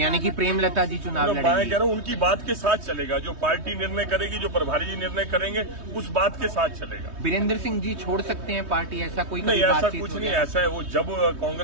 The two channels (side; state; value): left; late; 3.2 ms